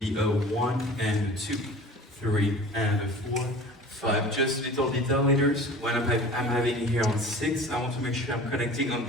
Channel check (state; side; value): normal; both; correlation 0.41